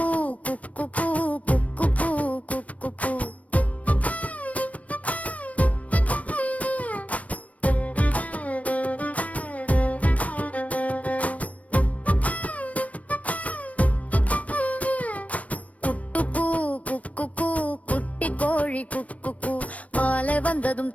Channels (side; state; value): right; late; 0.067 ms